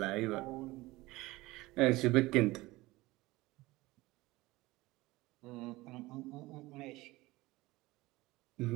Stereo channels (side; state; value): left; quieter; 19.9 dB